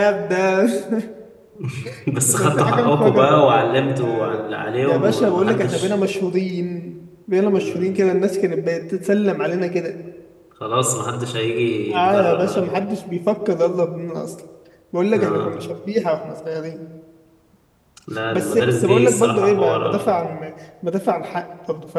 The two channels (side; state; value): both; identical; correlation 1.00